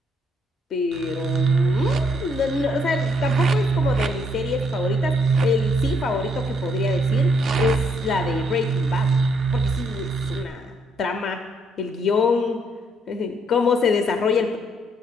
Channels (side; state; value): both; normal; correlation 0.71